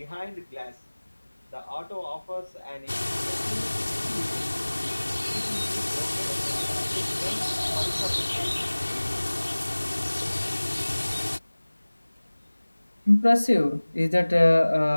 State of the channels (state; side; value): inverted; both; correlation -1.00